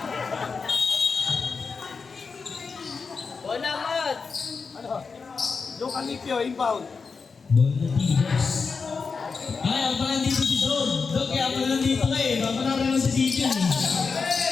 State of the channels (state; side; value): quieter; right; 5.0 dB